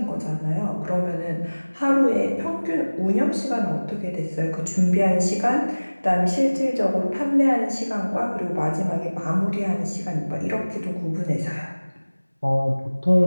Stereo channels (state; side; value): inverted; both; correlation -1.00